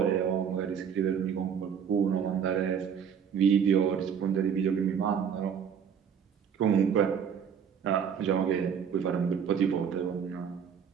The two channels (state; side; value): quieter; left; 7.6 dB